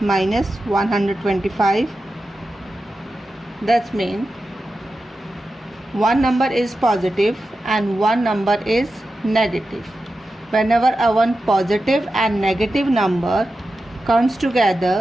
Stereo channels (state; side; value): normal; both; correlation 0.91